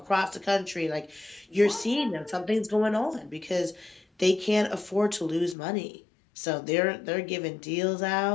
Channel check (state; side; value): drops out; right; at 5.6 s